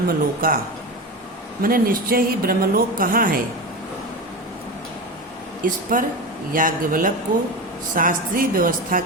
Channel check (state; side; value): normal; both; correlation 0.23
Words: मैंने निश्चय ही ब्रह्मलोक कहाँ है, इस पर याज्ञवल्क्य को शास्त्रीय व्यवस्था